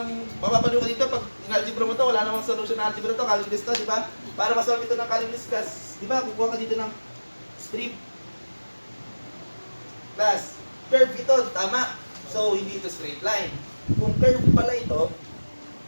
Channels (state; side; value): inverted; both; correlation -1.00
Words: mapapanood ka dito pag in-algebra mo to, wala namang solution na algebra to, calculus to, di ba? Para masolve ito ng calculus class, di ba, kukuha ka dito ng strip. Class, curve ito, tama. So, hindi ito straight line. Kung curve pala ito,